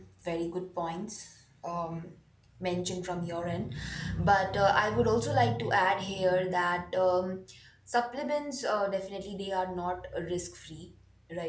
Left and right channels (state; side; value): identical; both; correlation 1.00